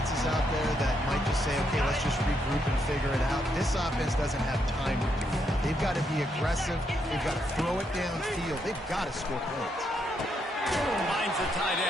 out there that might just say, okay, let's just regroup and figure it out. This offense doesn't have time to do that. They've got to be aggressive. They've got to throw it downfield. They've got to score points. Finds the tight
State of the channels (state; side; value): normal; both; correlation 0.78